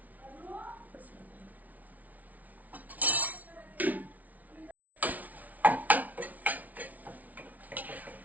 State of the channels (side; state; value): left; late; 0.074 ms